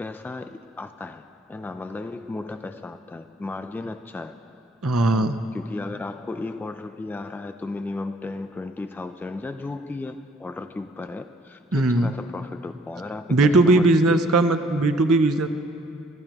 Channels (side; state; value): both; normal; correlation 0.61